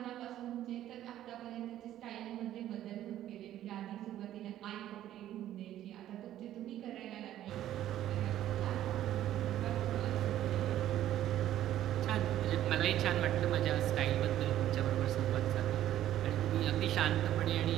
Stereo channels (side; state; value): left; quieter; 12.5 dB